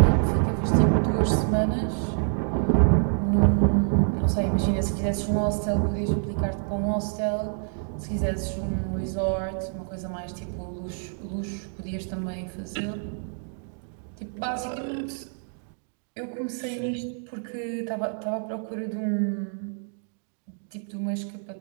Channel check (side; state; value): left; silent; 60 dB below the other